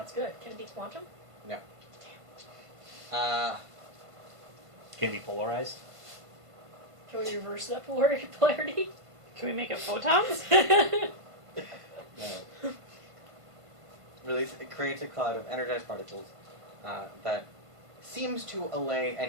good. Can it be quantum? No. Can be polarized. Can we reverse that polarity? Can we make it photons? No. It creates a cloud of energized particles that seems to allay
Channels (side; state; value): left; late; 1.5 ms